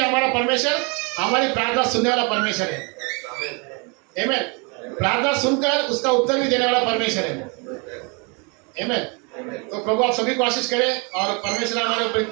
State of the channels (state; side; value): quieter; left; 32.3 dB